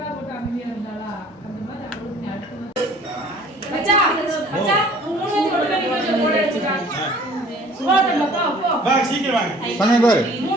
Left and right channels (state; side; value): normal; both; correlation 0.53